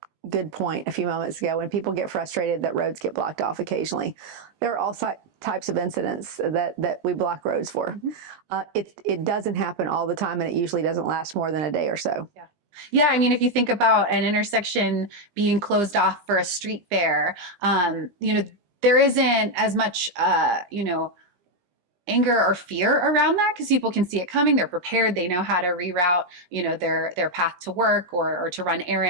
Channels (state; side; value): late; left; 20 ms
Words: good point a few moments ago. When people get frustrated that roads get blocked off occasionally, there are all types of incidents that we block roads for. Mm-hmm. It doesn't happen all the time, and it usually doesn't last more than a day or so. Yeah. Yeah, I mean, if you think about an intersection being closed off for a street fair, there isn't as much, anger or fear around that because people can see it coming. They're prepared. They know how to reroute, their path to work or to run